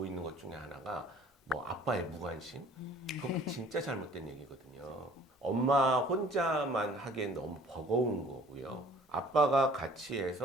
있는 것 중에 하나가 뭐 아빠의 무관심 그거 진짜 잘못된 얘기거든요. 엄마 혼자만 하기엔 너무 버거운 거고요. 아빠가 같이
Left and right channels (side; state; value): both; normal; correlation 0.52